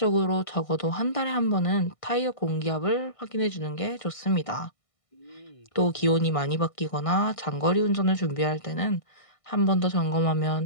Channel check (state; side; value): late; right; 1.6 ms